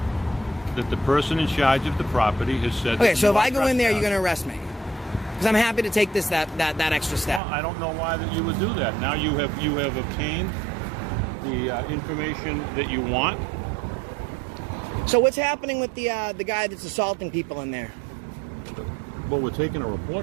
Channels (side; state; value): left; drops out; at 7.4 s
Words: that the person in charge of the property has said... Okay, so if I go in there, you're going to arrest me? Because I'm happy to take that extra step. Well, I don't know why that you would do that. Now you have obtained the information that you want. So what's happening with the guy that's assaulting people in there? Well, we're taking a